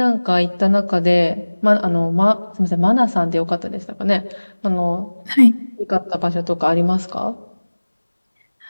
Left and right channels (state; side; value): inverted; both; correlation -1.00